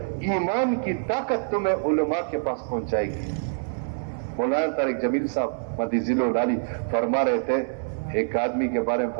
ایمان کی طاقت تمہیں علماء کے پاس پہنچائے گی. مولانا طارق جمیل صاحب مدی ذیل العالی فرما رہے تھے، ایک آدمی کے بارے میں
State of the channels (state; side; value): silent; left; digital silence